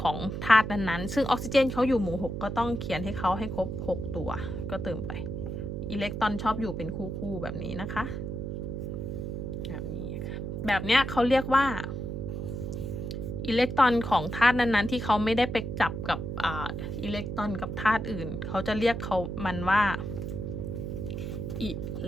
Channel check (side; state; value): right; noise; hum, 4 dB below the sound